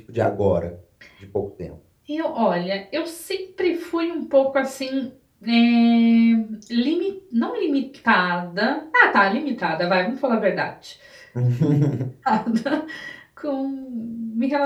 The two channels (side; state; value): both; identical; correlation 1.00